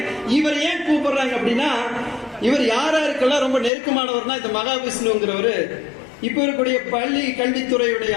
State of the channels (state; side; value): drops out; right; at 3.7 s